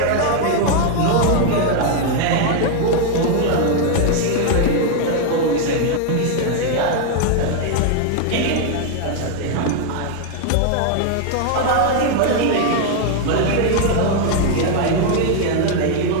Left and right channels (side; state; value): both; different; correlation 0.00